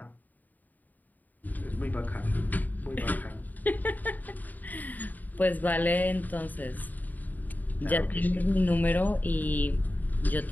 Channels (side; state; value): right; late; 0.083 ms